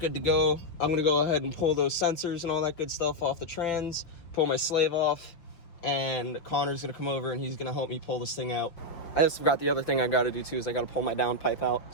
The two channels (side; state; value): right; late; 5.9 ms